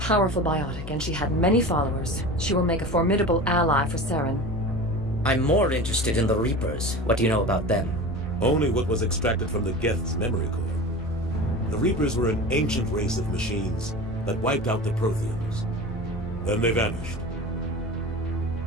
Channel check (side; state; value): both; normal; correlation 0.32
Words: biotic, and she had many followers. She will make a formidable ally for Saren. I'm more interested in the Reapers. What do you know about them? Only what was extracted from the Geth's memory core. The Reapers were an ancient race of machines that wiped out the Protheans. Then they vanished.